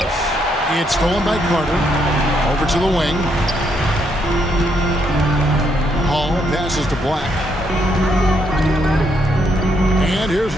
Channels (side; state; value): both; normal; correlation 0.75